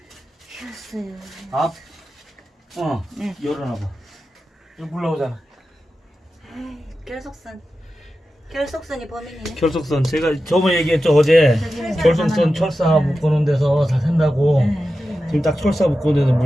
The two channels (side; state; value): both; normal; correlation 0.92